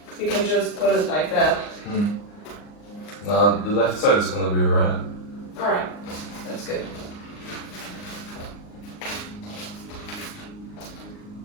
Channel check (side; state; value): right; late; 39 ms